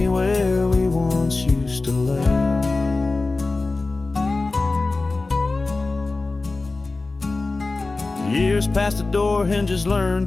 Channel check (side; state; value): right; quieter; 3.5 dB